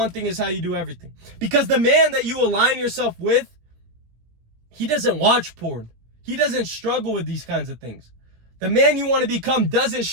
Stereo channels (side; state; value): left; late; 17 ms